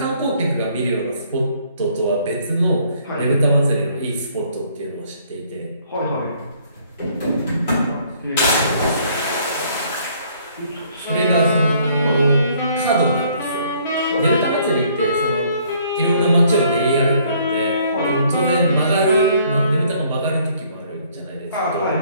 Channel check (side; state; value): both; inverted; correlation -0.62